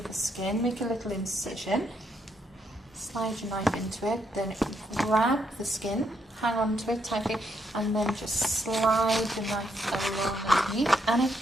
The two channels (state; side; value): normal; both; correlation 0.77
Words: the skin, make a little incision, slide your knife into it, then grab the skin, hang on to it tightly, and then just slide the knife along underneath, and it